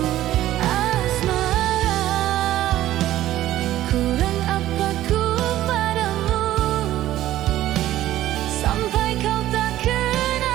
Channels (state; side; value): quieter; left; 13.9 dB